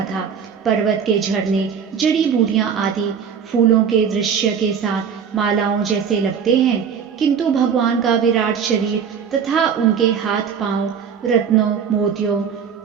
था। पर्वत के झरने, जड़ी बूटियां आदि फूलों के दृश्य के साथ मालाओं जैसे लगते हैं, किंतु भगवान का विराट शरीर तथा उनके हाथ पांव रत्नों, मोतियों,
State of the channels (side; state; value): left; quieter; 7.2 dB